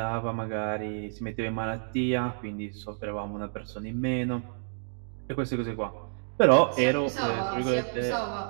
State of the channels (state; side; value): silent; left; digital silence